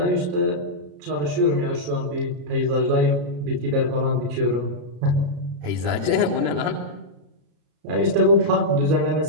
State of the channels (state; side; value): late; left; 33 ms